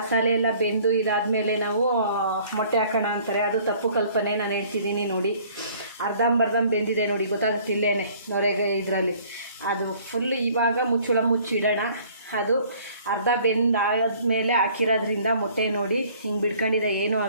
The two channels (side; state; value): both; inverted; correlation -0.55